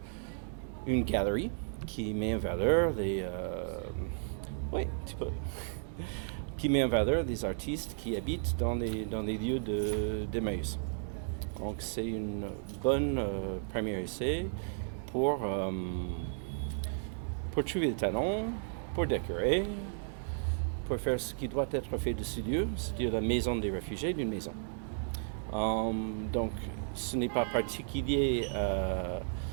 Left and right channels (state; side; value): silent; left; digital silence